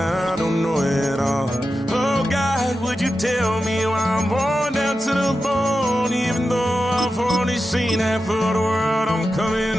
don't know at all. Oh God, would you tell me why I'm worn down to the bone? Even though I've only seen half of the world, I'm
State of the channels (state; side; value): normal; both; correlation 0.91